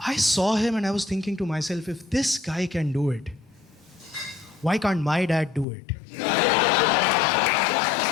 saw him and I was thinking to myself, if this guy can do it, why can't my dad do it?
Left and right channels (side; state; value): right; drops out; at 5.7 s